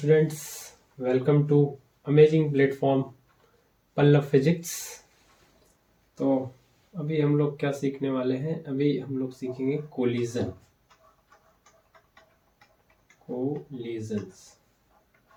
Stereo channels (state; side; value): identical; both; correlation 1.00